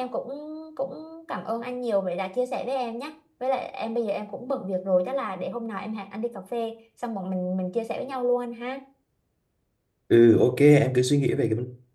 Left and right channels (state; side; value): identical; both; correlation 1.00